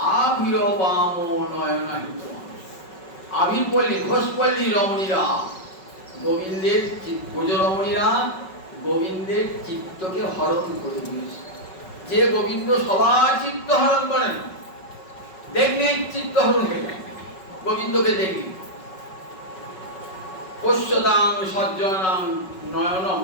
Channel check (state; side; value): late; right; 5.4 ms